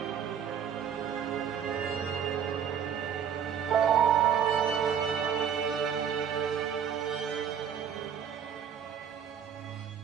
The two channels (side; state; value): left; quieter; 8.2 dB